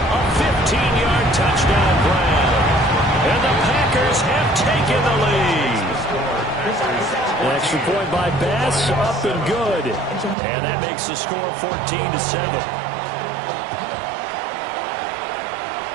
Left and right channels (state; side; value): drops out; left; at 10.4 s